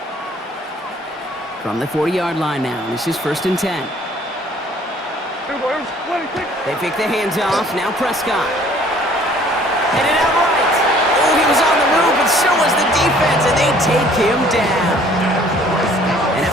From the 40-yard line now, this is 1st and 10. They pick the hands off. Now Prescott. Headed out right. Oh, he was on the move, but so was the defense, and they take him down. And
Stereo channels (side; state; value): both; normal; correlation 0.56